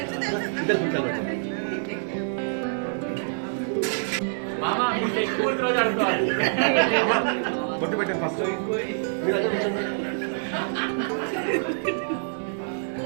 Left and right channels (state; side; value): silent; left; digital silence